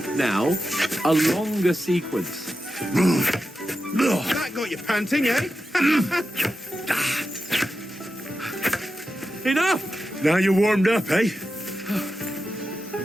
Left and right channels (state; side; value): normal; both; correlation 0.90